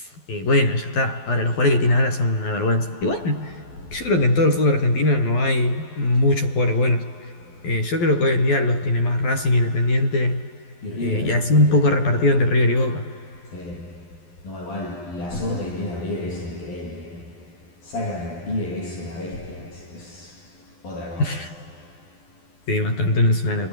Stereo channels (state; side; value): late; right; 12 ms